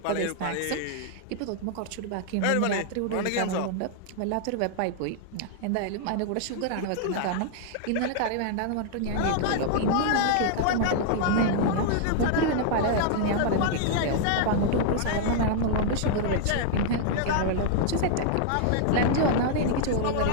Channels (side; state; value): both; different; correlation -0.01